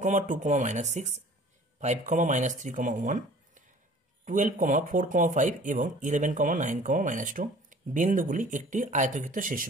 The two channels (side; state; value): both; normal; correlation 0.49